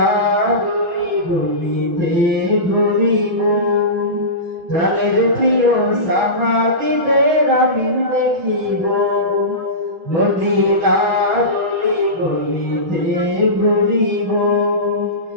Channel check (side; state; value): left; late; 6.2 ms